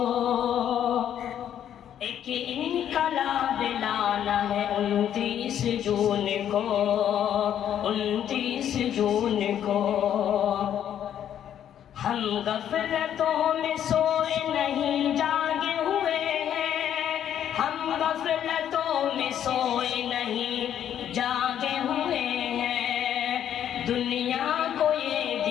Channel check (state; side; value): quieter; right; 10.1 dB